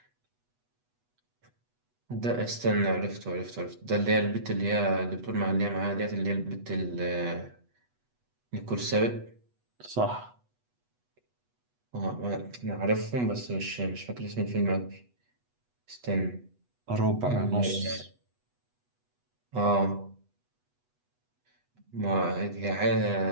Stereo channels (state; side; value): late; left; 8.2 ms